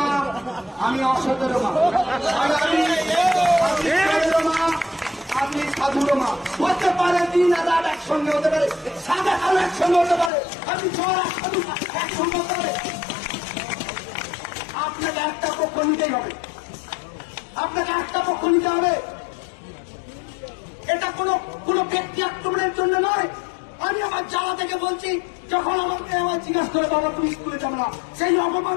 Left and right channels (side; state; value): right; drops out; at 10.3 s